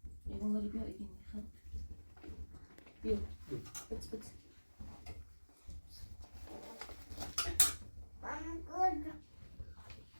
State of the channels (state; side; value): inverted; both; correlation -1.00